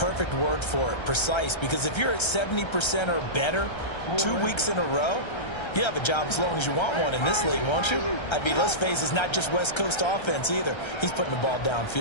word for it, precise, because if you're at 70% or better 2 weeks in a row, you have a job as long as you want one in this league, won't you? I mean, let's face it, it's not just West Coast offense either. He's putting the ball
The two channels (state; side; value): late; right; 1.3 ms